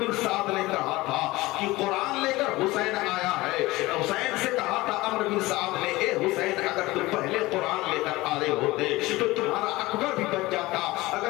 بن سعد نے کہا تھا کہ قرآن لے کر حسین آیا ہے، حسین سے کہا تھا عمرو بن سعد نے اے حسین اگر تم پہلے قرآن لے کر آئے ہوتے تو تمہارا اکبر بھی بچ جاتا،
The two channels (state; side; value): quieter; right; 19.8 dB